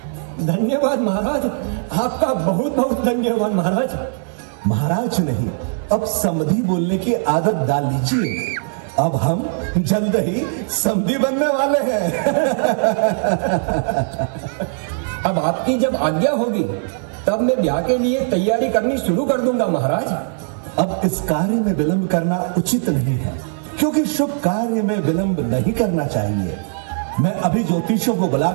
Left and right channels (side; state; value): left; silent; 66 dB below the other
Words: धन्यवाद महाराज, आपका बहुत बहुत धन्यवाद महाराज। महाराज नहीं, अब समधी बोलने की आदत डाल लीजिए। अब हम जल्द ही समधी बनने वाले हैं। अब आपकी जब आज्ञा होगी तब मैं ब्याह के लिए तैयारी करनी शुरू कर दूंगा महाराज। अब इस कार्य में विलंब करना उचित नहीं है, क्योंकि शुभ कार्य में विलंब नहीं करना चाहिए। मैं अभी ज्योतिषियों को